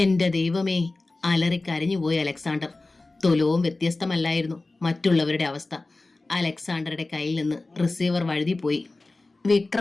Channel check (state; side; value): quieter; right; 3.2 dB